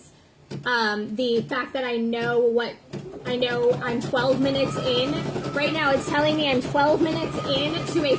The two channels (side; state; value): both; identical; correlation 1.00